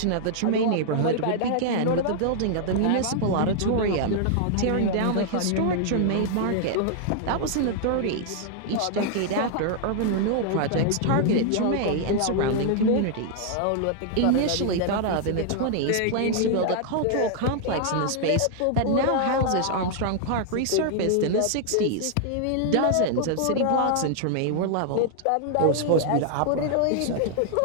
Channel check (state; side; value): different; both; correlation -0.01